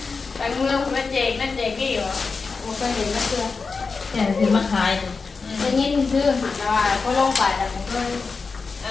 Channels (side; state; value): right; quieter; 4.6 dB